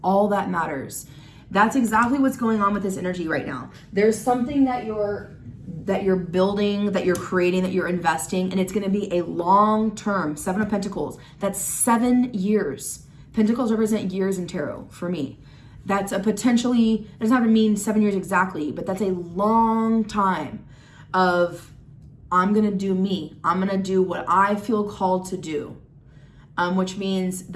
all that matters. That's exactly what's going on with this energy right now. There's something that you're building, that you're creating, that you're investing, and it's going to be a long term. Seven of Pentacles. That's 7 years. Pentacles represent years in tarot for me. That's a potentially, it doesn't have to mean 7 years exactly, but that's a long time of, I'm going to do me. I'm going to do what I feel called to do, which means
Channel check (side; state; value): both; identical; correlation 1.00